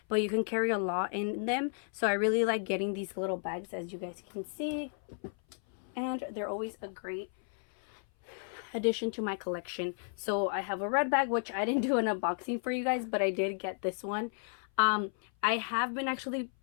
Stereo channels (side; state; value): right; silent; 56 dB below the other